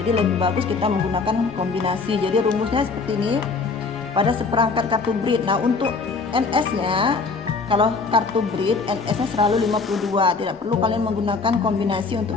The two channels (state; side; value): quieter; right; 4.5 dB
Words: lebih bagus kita menggunakan kombinasi. Jadi rumusnya seperti ini. Pada seperangkat kartu breed. Nah, untuk NS-nya, kalau kartu breed NS-nya selalu 52. Tidak perlu kalian menggunakan kombinasi